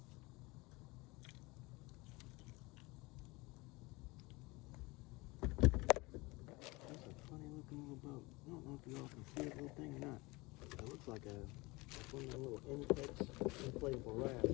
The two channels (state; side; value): quieter; right; 23.7 dB